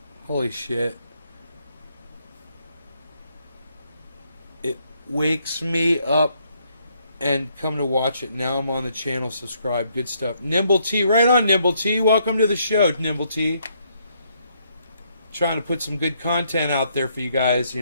Holy shit. It wakes me up and come to watch it. Now I'm on the channel. Subscribe. Good stuff. Nimble T. Right on, Nimble T. Welcome to the show, Nimble T. trying to put some good content out there for you guys, you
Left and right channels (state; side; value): inverted; both; correlation -0.73